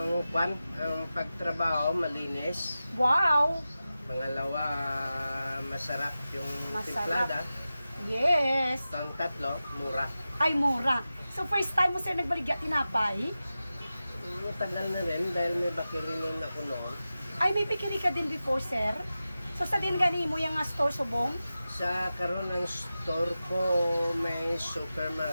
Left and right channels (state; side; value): inverted; both; correlation -0.94